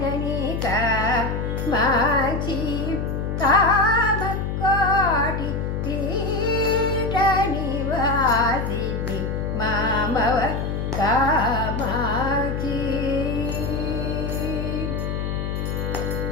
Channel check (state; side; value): noise; left; hum, 2 dB below the sound